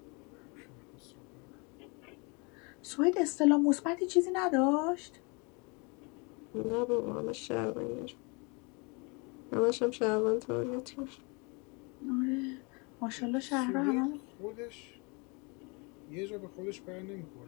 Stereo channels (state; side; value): quieter; right; 31.0 dB